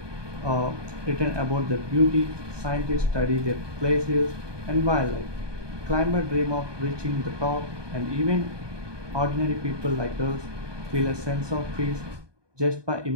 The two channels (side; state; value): left; late; 1.2 ms